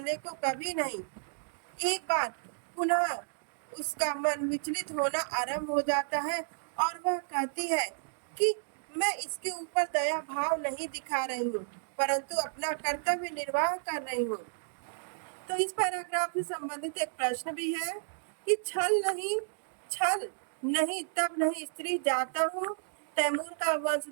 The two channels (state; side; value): silent; left; digital silence